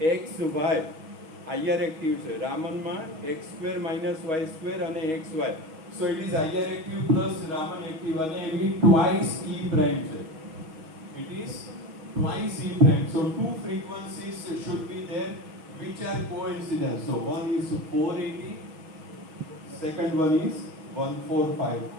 XY IR active છે, Raman માં x2 y2 અને xy. So it is IR active plus Raman active અને એવી twice E prime છે. It is twice E prime. So two frequencies should be there which are coincident. So one is 480, second one is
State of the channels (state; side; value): late; left; 6.3 ms